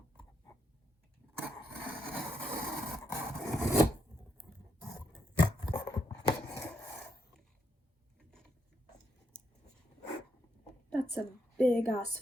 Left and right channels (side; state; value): both; normal; correlation 0.80